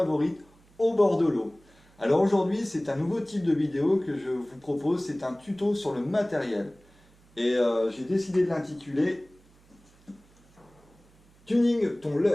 au bord de l'eau. Alors aujourd'hui c'est un nouveau type de vidéo que je vous propose, c'est un tuto sur le matériel. Et j'ai décidé de l'intituler Tuning ton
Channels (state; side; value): noise; right; hum, 29 dB below the sound